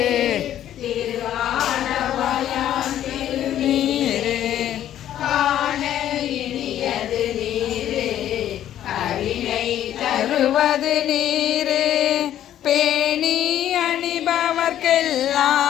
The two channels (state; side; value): quieter; right; 11.5 dB